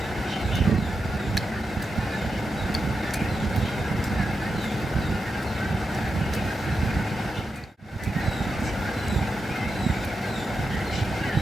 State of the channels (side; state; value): both; normal; correlation 0.88